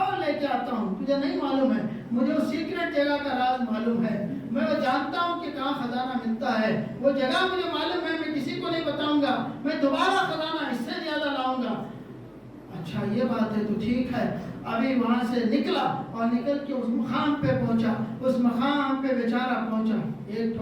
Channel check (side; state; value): both; identical; correlation 1.00